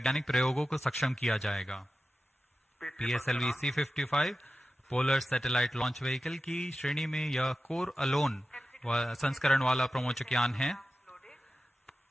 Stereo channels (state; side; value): normal; both; correlation 0.93